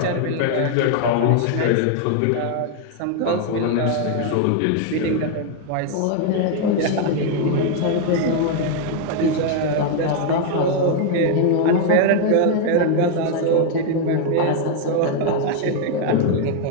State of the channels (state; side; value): different; both; correlation 0.01